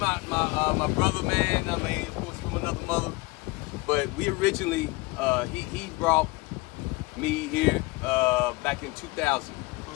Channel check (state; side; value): quieter; right; 24.0 dB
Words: brother, man. I mean, of course, from another mother. But we originally, he brought me here back in 2000.